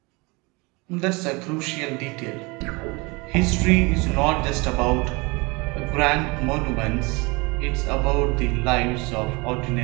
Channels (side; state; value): left; quieter; 26.7 dB